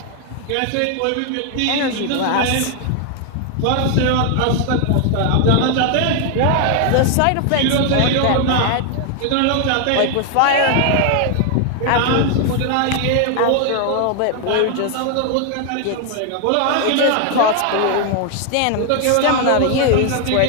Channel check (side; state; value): both; different; correlation 0.00